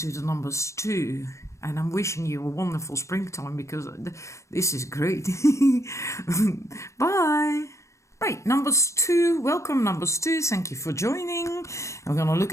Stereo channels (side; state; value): right; late; 0.15 ms